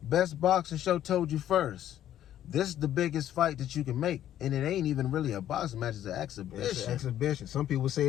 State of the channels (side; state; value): right; quieter; 11.6 dB